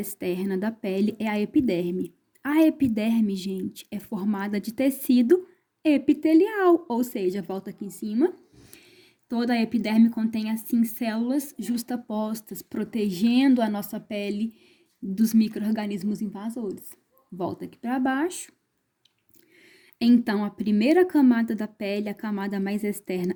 da pele é a epiderme. A epiderme, gente, é formada de tecido epitelial, ou seja, volta aqui em cima. Toda a epiderme contém, assim, células justapostas, protegendo a nossa pele dos micro-organismos invasores. Volta aqui para baixo. Então, a primeira camada da pele, a camada mais externa,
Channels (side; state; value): both; identical; correlation 1.00